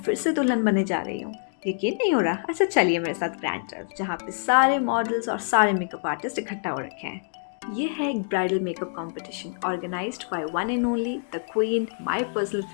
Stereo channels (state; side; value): silent; right; digital silence